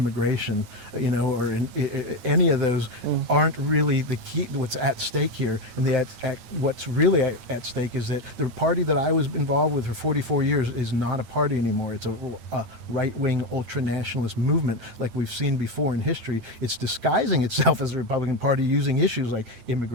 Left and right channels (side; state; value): left; late; 9.1 ms